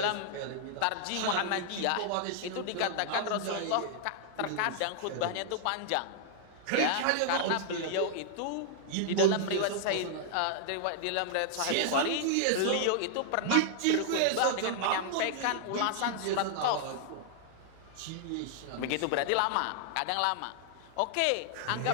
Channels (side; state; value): both; different; correlation -0.01